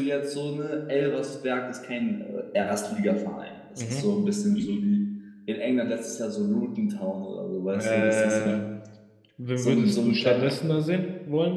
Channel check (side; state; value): both; identical; correlation 1.00